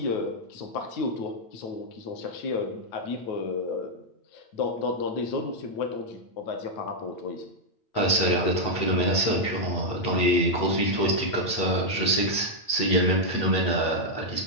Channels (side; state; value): right; late; 8.8 ms